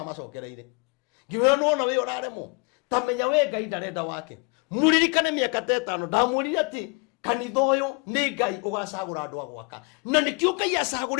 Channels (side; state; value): right; quieter; 30.6 dB